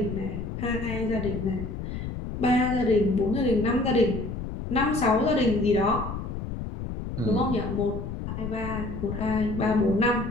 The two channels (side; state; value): left; noise; rumble, 6 dB below the sound